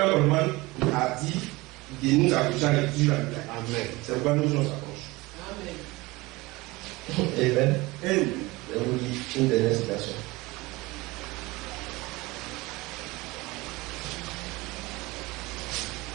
Coleman a dit de nous accrocher à l'écriture sur la Bible. Amen. C'est pourquoi nous on s'accroche. Amen. Amen. Je vous dis une dernière citation.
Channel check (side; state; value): left; quieter; 21.9 dB